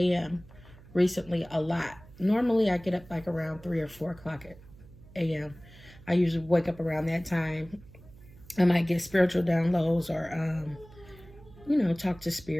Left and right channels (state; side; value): noise; right; hum, 21 dB below the sound